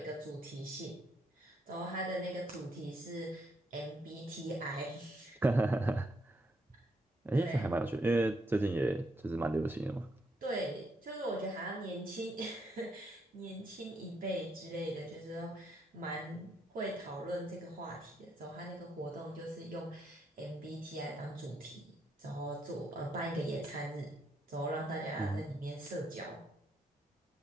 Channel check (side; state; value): both; normal; correlation 0.76